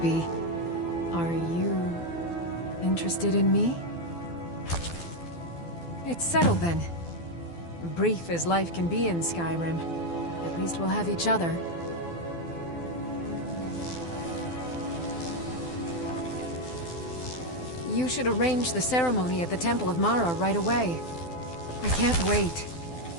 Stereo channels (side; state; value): right; late; 12 ms